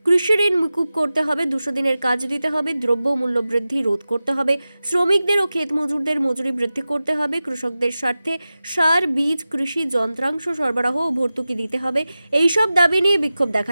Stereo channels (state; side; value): inverted; both; correlation -0.95